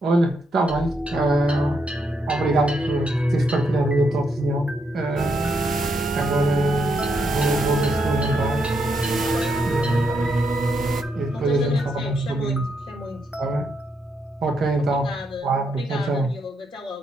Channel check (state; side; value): normal; both; correlation 0.79